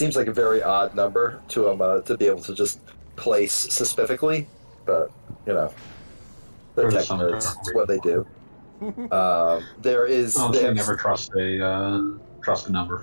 like a very odd number to be able to just place specifically, but you know, they're tech nerds. It's what they do. There is. Honestly, never trust a number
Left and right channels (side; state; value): both; inverted; correlation -1.00